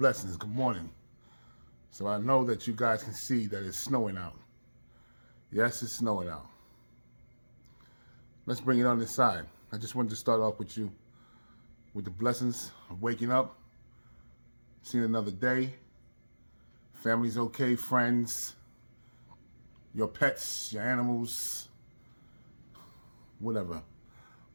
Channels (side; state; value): both; inverted; correlation -1.00